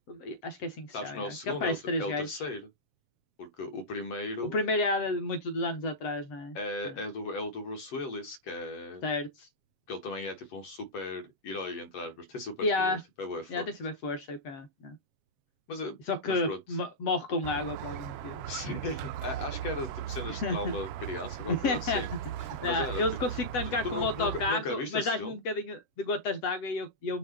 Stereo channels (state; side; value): late; right; 7.5 ms